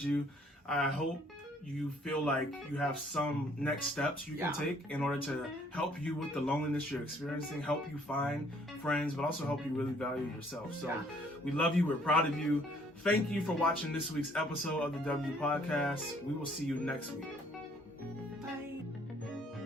you. I hope you feel like you have some next steps you can take in order to help you with the loneliness you're experiencing, help you find friends, but also help you really value yourself. So we love you. We're proud of you. Thank you for watching this week's episode of the W Podcast. We will see you next week. Bye.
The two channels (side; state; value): both; normal; correlation 0.62